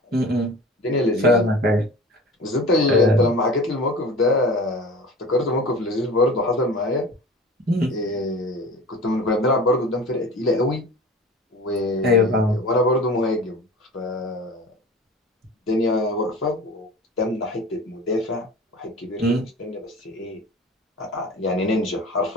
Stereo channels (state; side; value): normal; both; correlation 0.38